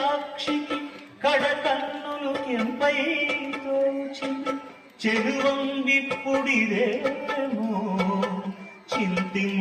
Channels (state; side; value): identical; both; correlation 1.00